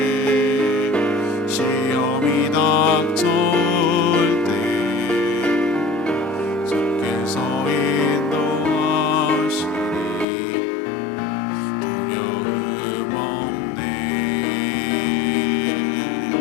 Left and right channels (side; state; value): right; drops out; at 10.2 s